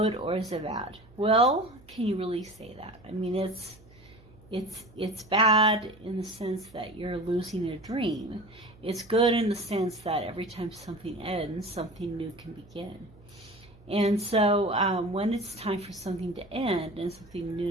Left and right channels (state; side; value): noise; right; hum, 25 dB below the sound